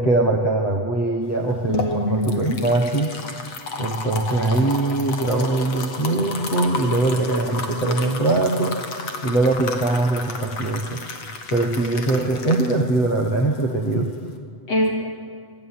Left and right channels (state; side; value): late; right; 8.0 ms